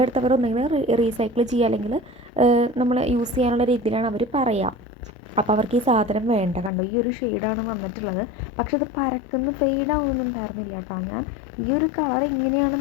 ഒന്നെങ്കിൽ റീസൈക്കിൾ ചെയ്യുക അല്ലെങ്കിൽ നമ്മൾ യൂസ് ചെയ്യാനുള്ള രീതിയിലാണ് അവർ പറയുക. അപ്പോൾ അവർക്ക് ഈ സാധനം വേണ്ട. കണ്ടോ, ഈ ഒരു ഷെയ്ഡാണ് വന്നിട്ടുള്ളത്. പക്ഷെ അത് പരക്കുന്ന ഫെയ്ഡാവുന്നൊന്നും ഉണ്ടായിരുന്നില്ല കേട്ടോ. ഞാൻ ഈ ഒരു കളർ എങ്ങനെയാണ്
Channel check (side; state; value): right; drops out; at 6.7 s